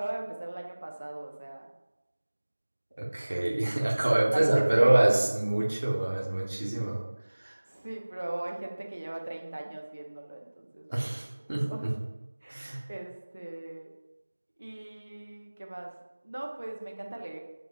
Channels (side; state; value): both; inverted; correlation -1.00